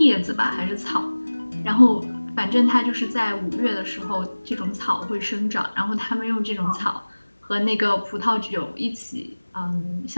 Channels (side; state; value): both; inverted; correlation -1.00